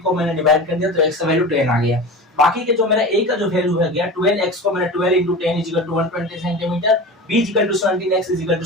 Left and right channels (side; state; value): both; normal; correlation 0.31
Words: को मैंने डिवाइड कर दिया तो x का वैल्यू 10 आ गया। बाकी के जो मेरा a का जो वैल्यू है गया 12x को मैंने 12 into 10 is equal to 120 centimetre, b is equal to 17x is equal to